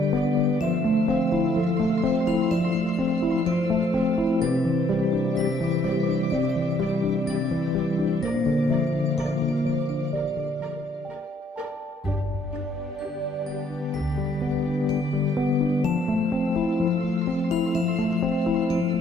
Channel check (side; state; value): both; normal; correlation 0.67